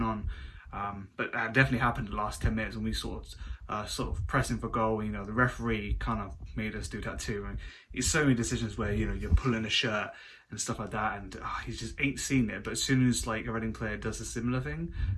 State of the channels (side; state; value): both; identical; correlation 1.00